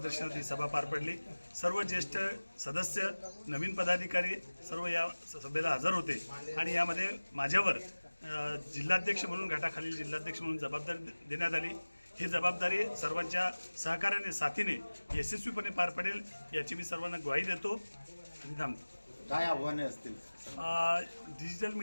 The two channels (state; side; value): inverted; both; correlation -1.00